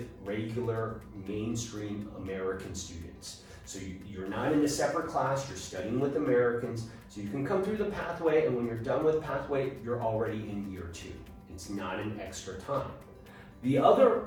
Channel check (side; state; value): both; identical; correlation 1.00